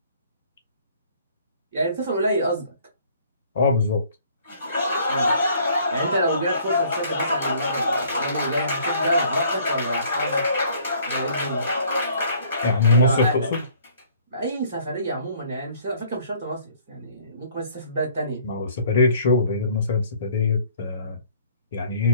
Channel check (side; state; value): both; inverted; correlation -0.57